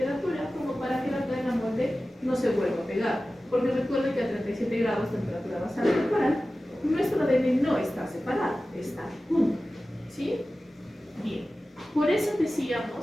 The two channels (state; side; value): normal; both; correlation 0.95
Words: como para que la cadena molde no se vuelva a pegar. Porque recuerden que a 37 grados temperatura basal corporal, nuestro ADN no está separado, está junto. ¿Sí? Bien. Por eso